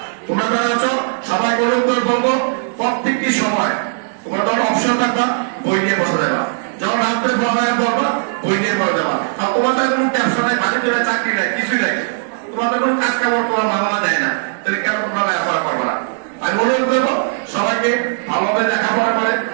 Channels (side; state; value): left; silent; digital silence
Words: তোমরা যারা আছো সবাই অনুরোধ করে বলবো প্রত্যেকটি সময় তোমরা যখন অপশন থাকবা বই নিয়ে বসে যাবা, যখন রাত্রে পড়ালেখা করবা বই নিয়ে পড়ে যাবা। আর তোমাদের কোনো ব্যবসা নাই, বাণিজ্য নাই, চাকরি নাই, কিছুই নাই, তোমাদের কোনো কাজ কামড় তোমার বাবা দেয় না, তাহলে কেন তোমরা লেখাপড়া করবো না? আমি অনুরোধ করবো সবাইকে ভালোভাবে লেখাপড়া করে